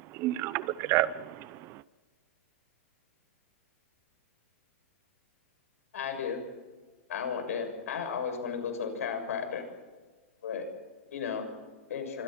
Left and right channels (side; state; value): both; normal; correlation -0.08